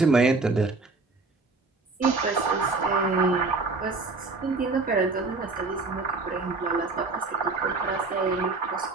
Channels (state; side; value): quieter; left; 3.7 dB